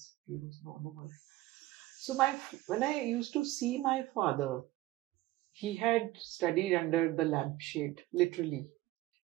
he was no more. So when I used to see my father, he had studied under the lampshade, literally.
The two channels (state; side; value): quieter; left; 17.0 dB